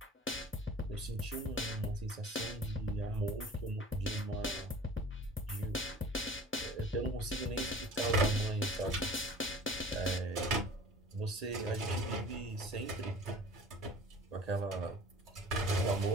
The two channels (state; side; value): normal; both; correlation 0.44